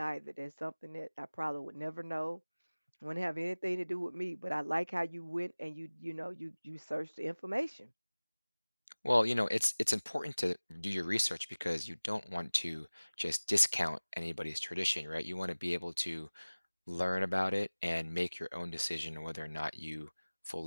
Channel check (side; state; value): both; inverted; correlation -1.00